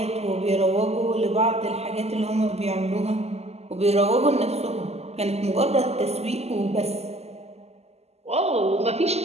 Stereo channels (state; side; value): late; left; 0.30 ms